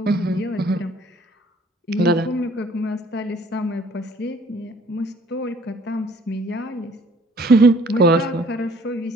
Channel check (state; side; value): normal; both; correlation 0.57